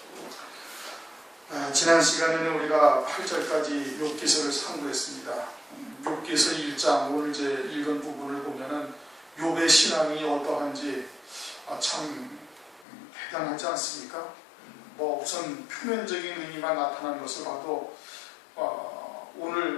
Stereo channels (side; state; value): right; drops out; at 12.9 s